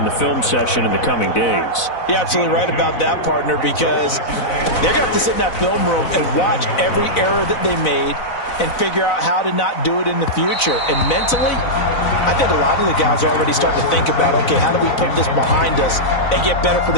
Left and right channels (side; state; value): right; late; 4.0 ms